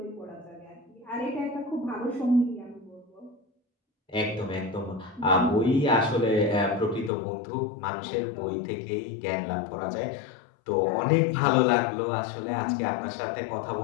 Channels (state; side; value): drops out; right; at 7.1 s